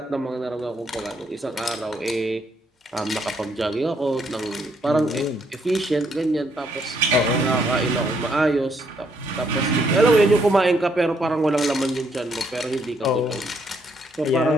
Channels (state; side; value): normal; both; correlation 0.72